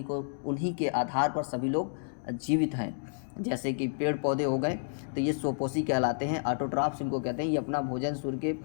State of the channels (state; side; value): silent; right; digital silence